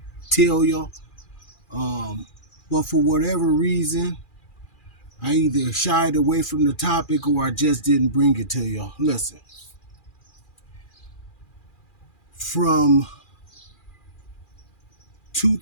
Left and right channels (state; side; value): late; right; 2.4 ms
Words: tell y'all, but for whatever reason, I either shied away from the topic or I just didn't bring it to y'all. Listen, from